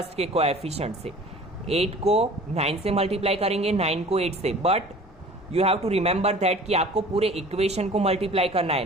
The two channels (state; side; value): normal; both; correlation 0.45